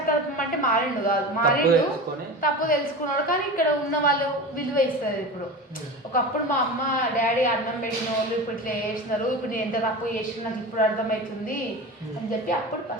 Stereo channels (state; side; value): normal; both; correlation 0.29